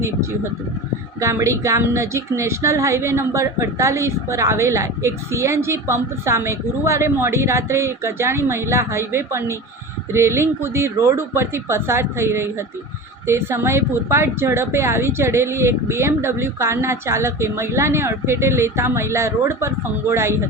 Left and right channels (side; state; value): both; normal; correlation 0.31